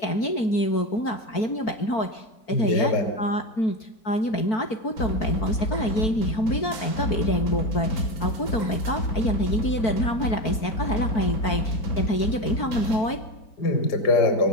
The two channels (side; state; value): right; late; 4.5 ms